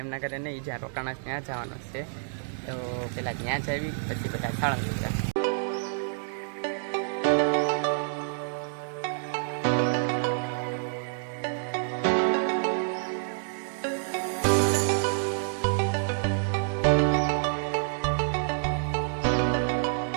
એમના ઘરે નહીં, જ્યાં રોકાણા ત્યાં જવાનું છે. તો પહેલાં ત્યાં જ આવી, પછી બધા સાળંગપુર જાય.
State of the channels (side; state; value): left; silent; digital silence